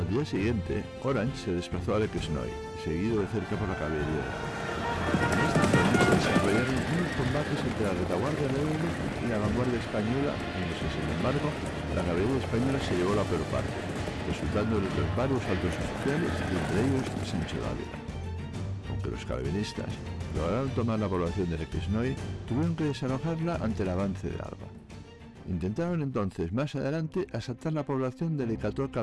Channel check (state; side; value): identical; both; correlation 1.00